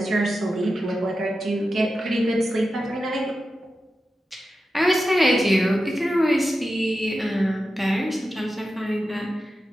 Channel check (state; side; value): normal; both; correlation 0.91